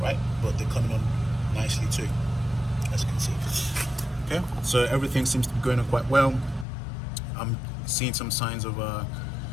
right? But they're coming on nicely too, as you can see. Okay, so everything seems to be going on quite well. I'm seeing some signs of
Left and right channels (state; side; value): drops out; right; at 6.7 s